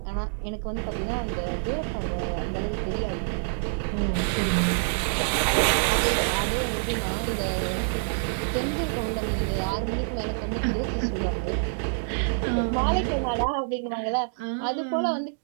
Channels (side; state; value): left; silent; digital silence